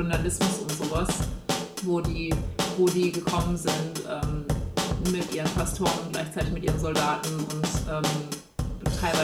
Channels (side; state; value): both; identical; correlation 1.00